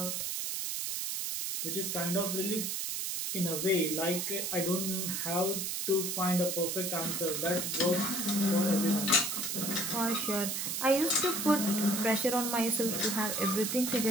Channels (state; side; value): noise; right; hiss, 2 dB below the sound